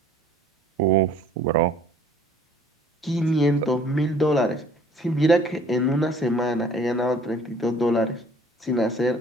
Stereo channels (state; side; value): normal; both; correlation 0.54